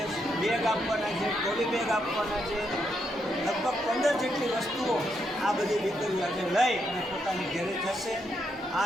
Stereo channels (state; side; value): normal; both; correlation 0.79